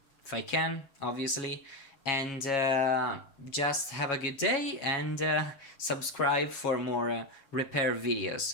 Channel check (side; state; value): right; late; 7.2 ms